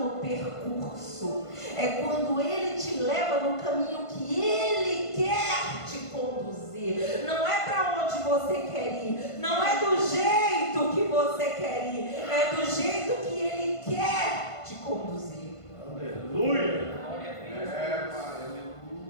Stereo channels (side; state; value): right; late; 1.5 ms